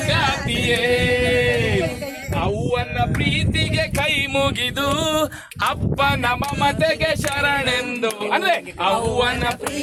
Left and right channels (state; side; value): identical; both; correlation 1.00